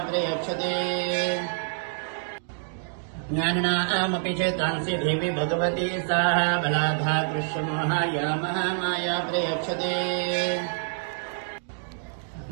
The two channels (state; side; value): silent; left; digital silence